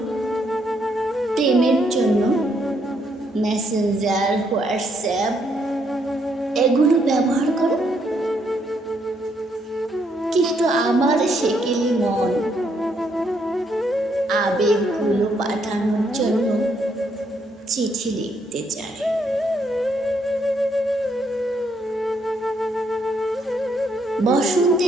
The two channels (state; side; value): normal; both; correlation 0.73